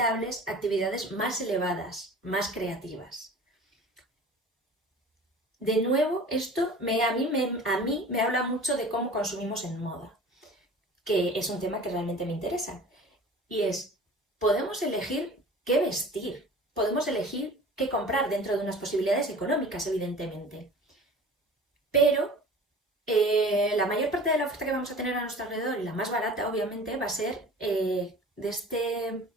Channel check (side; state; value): both; normal; correlation 0.41